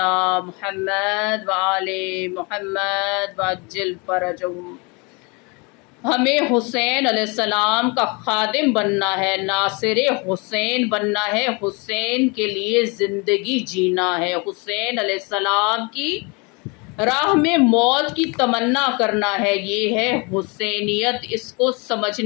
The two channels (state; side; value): quieter; right; 29.8 dB